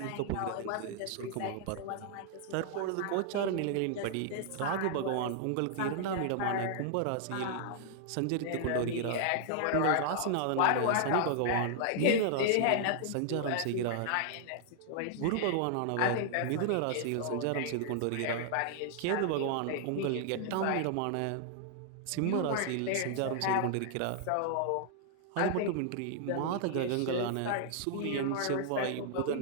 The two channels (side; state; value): both; different; correlation -0.01